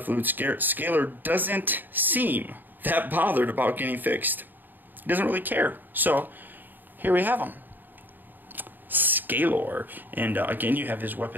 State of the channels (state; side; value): late; left; 0.090 ms